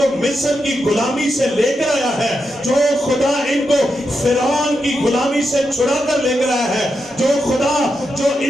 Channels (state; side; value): normal; both; correlation 0.86